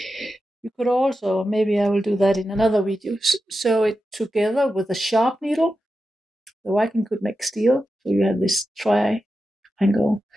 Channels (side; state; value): both; normal; correlation 0.90